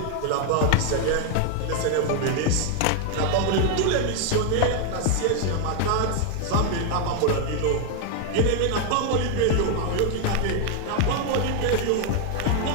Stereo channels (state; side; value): different; both; correlation 0.00